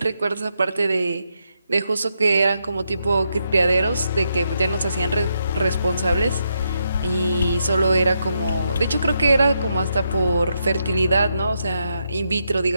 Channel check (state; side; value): inverted; both; correlation -0.81